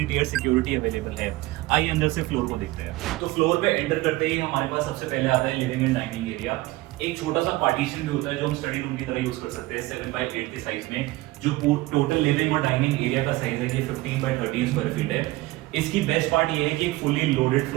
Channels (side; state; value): left; quieter; 19.2 dB